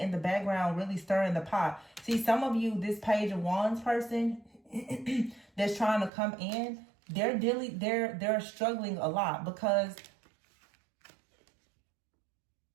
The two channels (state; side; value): drops out; left; at 6.1 s